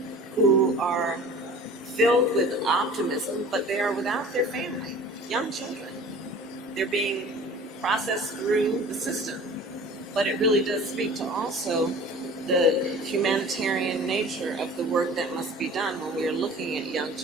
who are filled with optimism, but they are without their family, young children. They're being processed through the system. But it really does speak to also the humanitarian nature of the work that must be done when we are looking at young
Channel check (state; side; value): normal; both; correlation 0.43